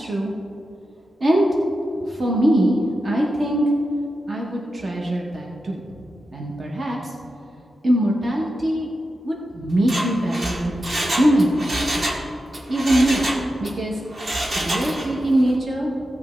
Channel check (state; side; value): normal; both; correlation 0.90